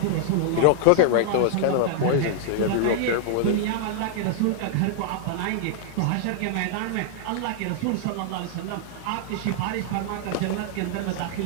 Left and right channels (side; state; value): both; different; correlation -0.01